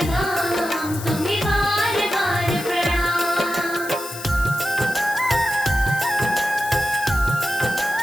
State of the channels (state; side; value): noise; left; hiss, 12 dB below the sound